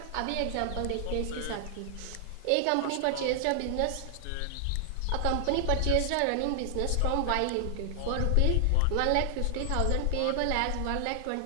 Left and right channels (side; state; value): both; different; correlation 0.00